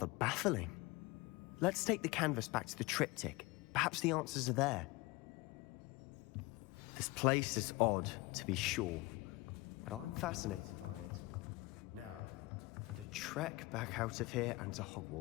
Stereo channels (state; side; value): quieter; right; 22.1 dB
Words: baffling. Let's take the canvas back to the triptych. Perhaps the answers are there. This place is odd, to be sure, but I'm fascinated by it. Now, for the trek back out of here and to